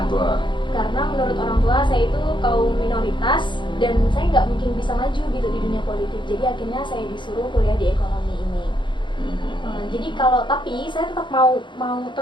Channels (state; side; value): late; right; 0.23 ms